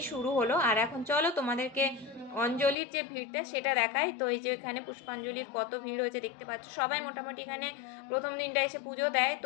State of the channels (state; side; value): drops out; right; at 2.8 s